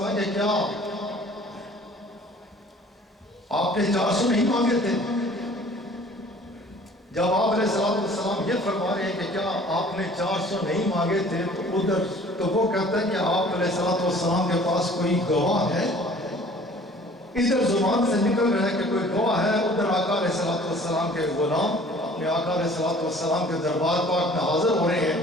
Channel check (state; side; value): normal; both; correlation 0.51